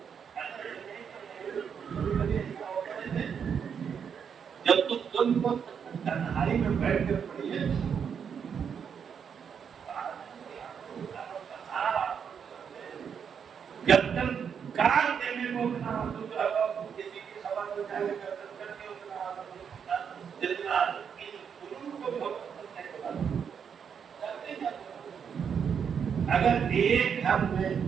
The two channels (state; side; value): quieter; left; 7.2 dB